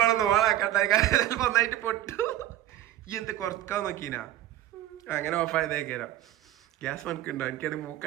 ഓണാക്കട്ടെ, ചിലപ്പോ ഒന്നായിട്ട് പൊട്ടു. ഈ എന്ത് കുറക്കാൻ നോക്കീനാ? അങ്ങനെ ഓഫ് ആയതേക്കാരോ. ഗ്യാസ് മണക്കുണ്ടോ? എനിക്കത്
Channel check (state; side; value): quieter; left; 13.3 dB